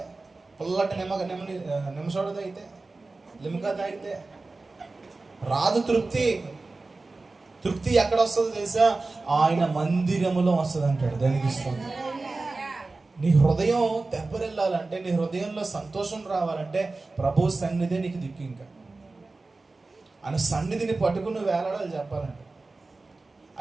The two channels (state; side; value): quieter; left; 3.5 dB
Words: పుల్లటి నిమ్మ సోడా తాగితే, లిమ్కా తాగితే రాదు తృప్తి. తృప్తి ఎక్కడ వస్తుందో తెలుసా? ఆయన మందిరములో వస్తుంది అంటాడు. దానికి ఇస్తుంది. నీ హృదయం తెప్పరిల్లాలంటే, నీ హృదయంలో సంతోషం రావాలంటే ప్రభు సన్నిధి నీకు దిక్కు. ఇంకా ఆయన సన్నిధిని పట్టుకుని వేలాడాలి చెప్పాలంటే.